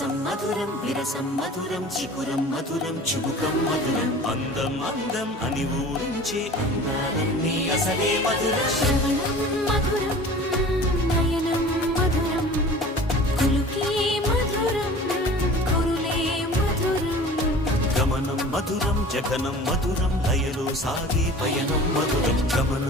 మధురం విరసం మధురం చికురం మధురం చుబుకం మధురం అందం అందం అని ఊరించే అందాలన్నీ అసలే మధురం శ్రవణం మధురం నయనం మధురం కులుకే మధురం కురులే మధురం గమనం మధురం జగనం మధురం లయలో సాగే పయనం మధురం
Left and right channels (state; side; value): normal; both; correlation 0.42